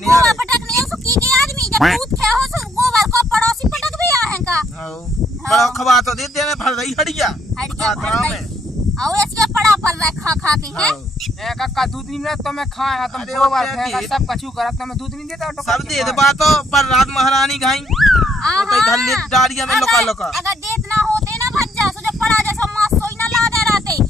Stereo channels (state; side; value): normal; both; correlation 0.70